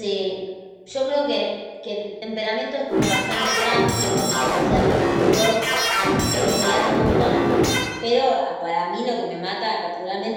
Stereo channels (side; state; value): both; identical; correlation 1.00